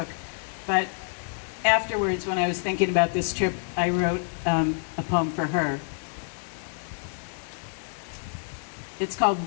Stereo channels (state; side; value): silent; right; digital silence